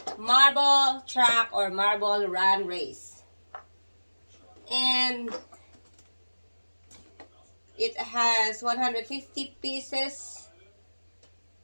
marble track or marble run race. And it has 150 pieces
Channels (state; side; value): inverted; both; correlation -1.00